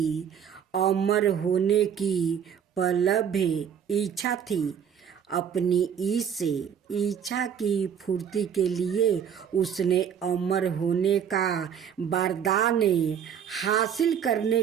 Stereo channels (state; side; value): quieter; left; 8.2 dB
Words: अमर होने की प्रबल इच्छा थी। अपनी इस इच्छा की पूर्ति के लिए उसने अमर होने का वरदान हासिल करने